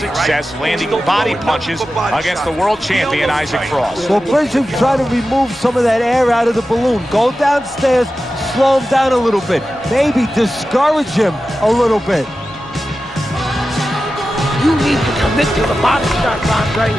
landing body punches against the world champion Isaac Frost. Well, Bishop tried to remove some of that air out of the balloon. Go downstairs, slow him down a little bit. Maybe discourage him a little bit. You need to commit to the body shots, Andre.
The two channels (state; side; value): normal; both; correlation 0.93